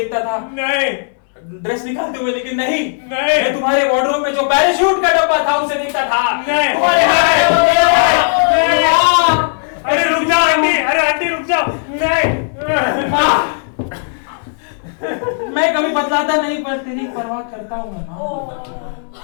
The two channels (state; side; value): silent; right; digital silence